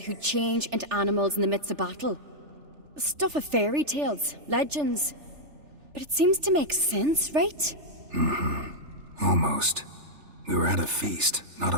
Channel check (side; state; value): left; late; 3.4 ms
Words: change into animals in the midst of battle. Stuff of fairy tales, legends. But it seems to make sense, right? Almost. We were at a feast, not